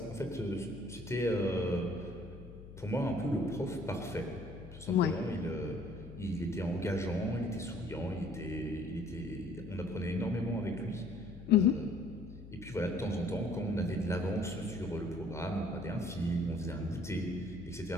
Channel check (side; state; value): left; noise; hum, 15 dB below the sound